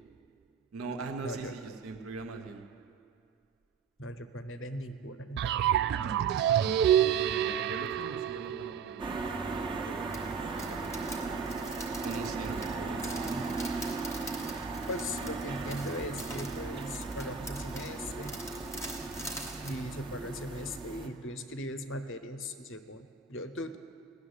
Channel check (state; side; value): quieter; left; 5.8 dB